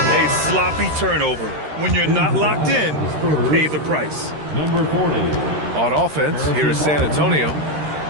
sloppy turnover. When you're not locked in, you pay the price. Number 40. On offense, here is San Antonio.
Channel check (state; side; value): late; left; 13 ms